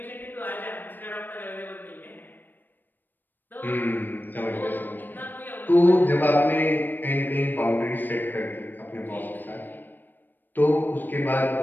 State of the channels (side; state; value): right; late; 0.092 ms